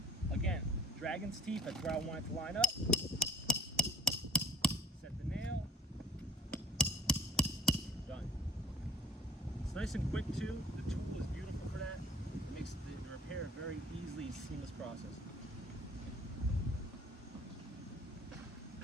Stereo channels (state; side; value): normal; both; correlation 0.53